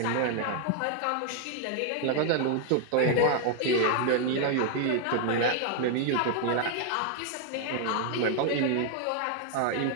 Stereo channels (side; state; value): both; different; correlation 0.00